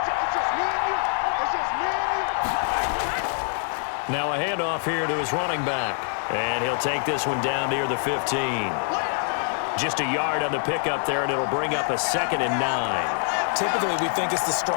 Now a handoff here to his running back. And he'll take this one down near the 15. Just a yard on the pickup there, and it'll bring up a 2nd and 9. Typically, we think it's the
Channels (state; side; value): silent; right; 62 dB below the other